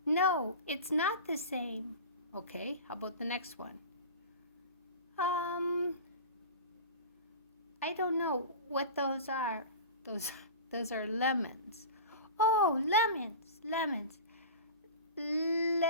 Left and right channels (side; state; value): both; inverted; correlation -0.33